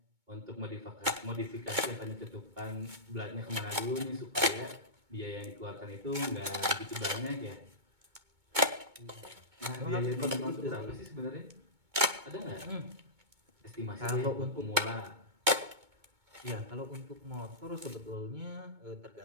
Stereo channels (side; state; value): left; late; 2.2 ms